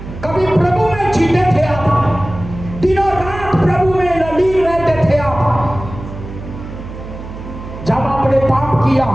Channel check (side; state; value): right; noise; hum, 11 dB below the sound